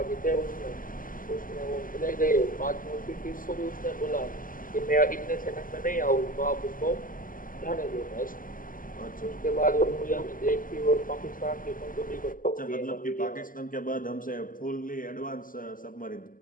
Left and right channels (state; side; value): late; right; 0.40 ms